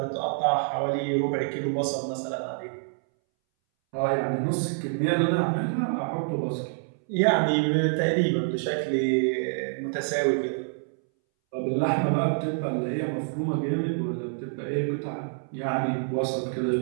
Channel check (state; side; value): silent; left; 60 dB below the other